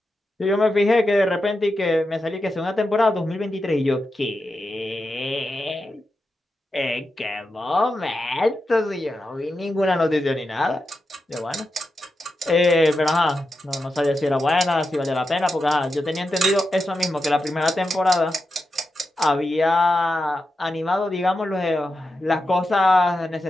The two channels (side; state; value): both; normal; correlation 0.89